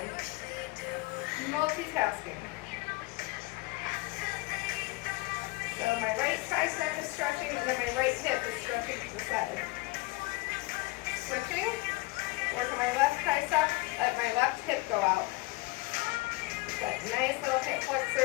Multitasking. So my right tricep is stretching and then my right hip is stretching to the side. Switching. Work on my left tricep. Let my left hip go out. That nice little hip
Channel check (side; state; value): right; quieter; 22.5 dB